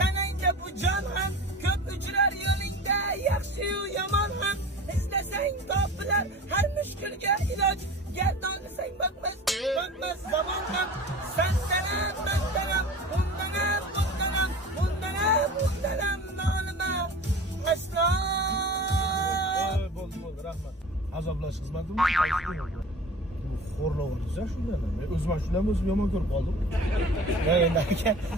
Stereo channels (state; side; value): normal; both; correlation 0.38